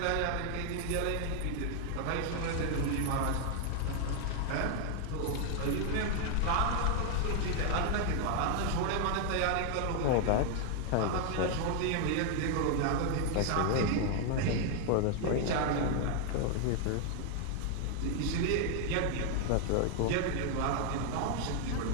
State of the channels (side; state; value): both; different; correlation 0.00